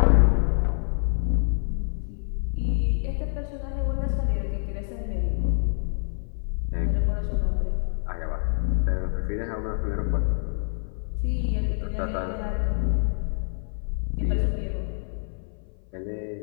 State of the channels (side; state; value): right; silent; 56 dB below the other